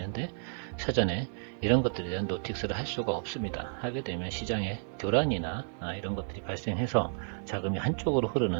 사전에 이런 것들에 대한 노틱스를 할 수가 없습니다. 하게 되면 시장에 교란이나 이런 것들이 발생해서 자금이 한쪽으로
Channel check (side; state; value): left; silent; digital silence